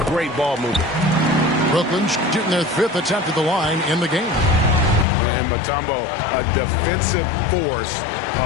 great ball movement. Brooklyn shooting their 5th attempt at the line in the game. And Mutombo, a defensive force,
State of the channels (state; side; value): drops out; right; at 5.1 s